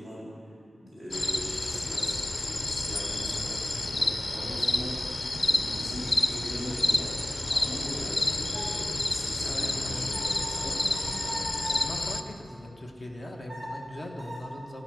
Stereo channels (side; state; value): both; normal; correlation 0.97